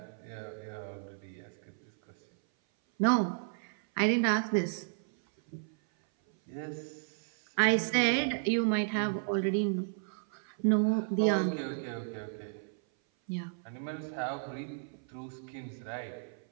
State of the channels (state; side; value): silent; left; 56 dB below the other